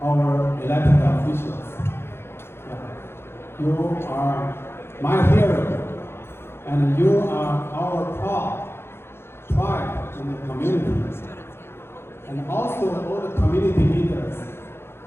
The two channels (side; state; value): right; late; 0.12 ms